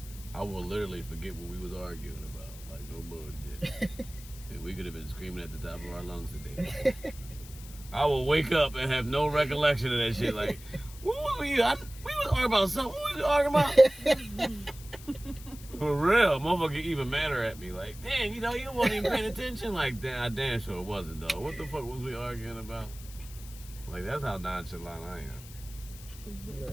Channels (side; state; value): left; noise; hiss, 18 dB below the sound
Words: I will literally forget what we was arguing about. Like no bullshit. And we could have been screaming at the top of our lungs today. I will wake up and have no recollection of that shit. Like, what were we? We was arguing about something. What was we arguing about? For real, motherfucker even madder at me. Like, damn, you know, you wasn't even paying attention. Like, damn, I damn sure wasn't though. What the fuck was we arguing about? Like, that's how nonchalant I am.